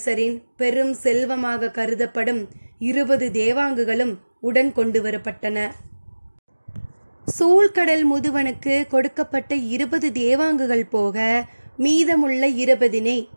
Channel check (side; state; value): both; inverted; correlation -1.00